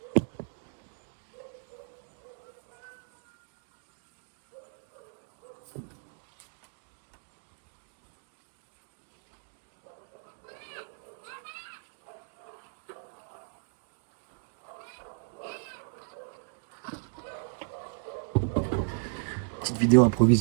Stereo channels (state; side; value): silent; left; digital silence